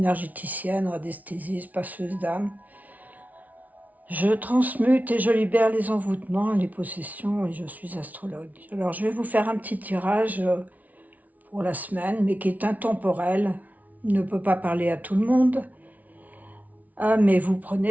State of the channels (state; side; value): late; left; 0.074 ms